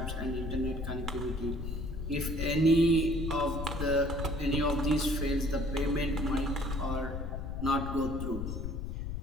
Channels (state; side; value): noise; left; rumble, 4 dB below the sound